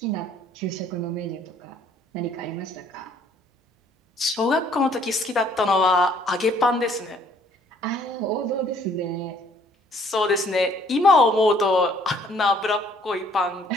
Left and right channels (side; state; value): both; normal; correlation 0.61